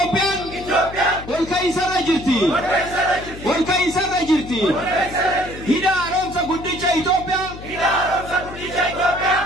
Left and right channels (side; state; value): left; noise; hum, 14 dB below the sound